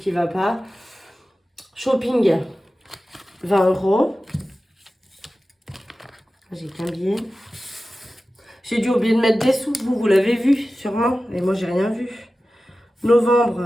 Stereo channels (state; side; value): normal; both; correlation 0.95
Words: va pas. Shopping, 20 €. J'ai qu'un billet. J'ai dû oublier de mettre des sous. Vous l'avez vu, sûrement. Et moi, j'ai rien vu.